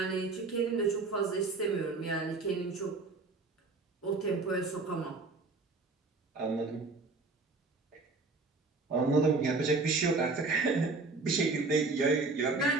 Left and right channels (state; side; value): quieter; left; 3.7 dB